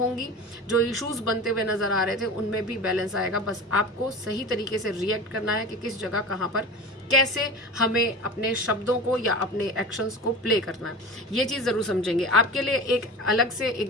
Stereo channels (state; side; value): normal; both; correlation 0.32